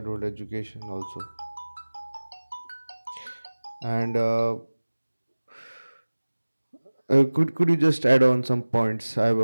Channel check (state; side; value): inverted; both; correlation -1.00